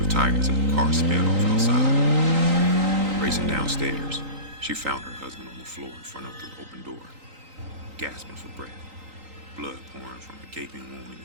tires as the car sped off outside. Racing downstairs, she found her husband on the floor in front of the open door, gasping for breath, blood pouring from a gaping wound in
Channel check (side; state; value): left; late; 3.9 ms